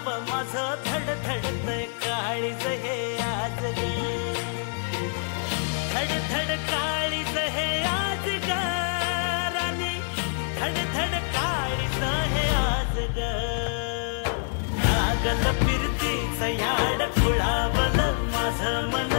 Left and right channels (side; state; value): right; silent; 61 dB below the other